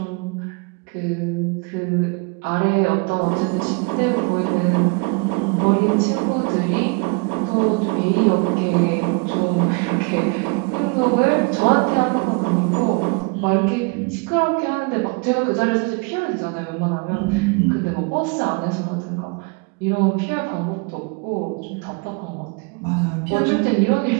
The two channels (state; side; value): quieter; left; 32.0 dB